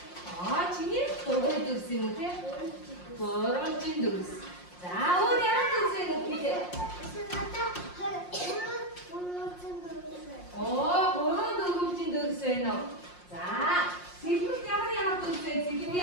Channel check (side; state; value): right; late; 5.6 ms